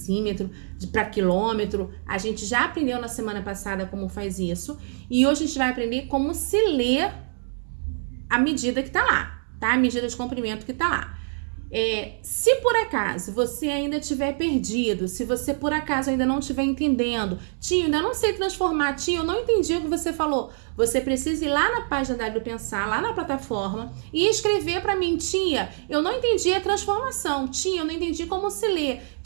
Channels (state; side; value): silent; left; 62 dB below the other